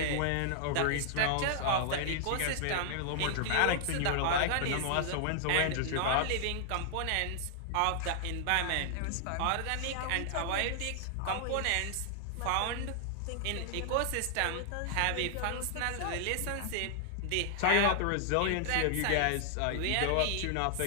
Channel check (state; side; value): different; both; correlation -0.01